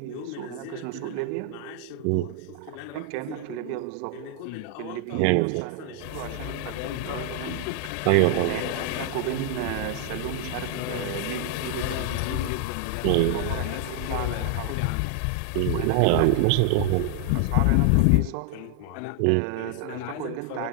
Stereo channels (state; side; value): different; both; correlation 0.00